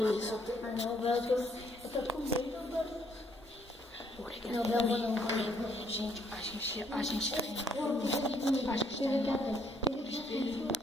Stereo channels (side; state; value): both; normal; correlation 0.67